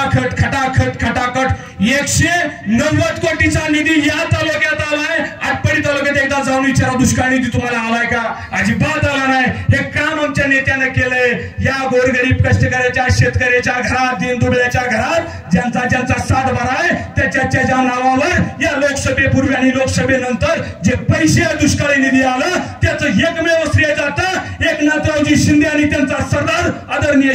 190 कोटीचा निधी या तालुक्यात आलाय. आटपाडी तालुक्यात एकदा जाऊन विचारा दुष्काळ निधी तुम्हाला आलाय का? अजिबात आला नाही. हे काम आमच्या नेत्यानं केलंय. या गोरगरीब कष्टकऱ्याच्या शेतकऱ्याच्या घरात दीनदुबळ्याच्या घरात ज्यांचा सातबारा आहे त्याच्या नावावर या लोकसभेपूर्वी आणि लोकसभेनंतर जे पैसे दुष्काळी निधी आलं त्याचं एकमेव श्रेय जातं एकनाथरावजी शिंदे आणि त्यांचा सरदार आदरणीय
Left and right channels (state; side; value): identical; both; correlation 1.00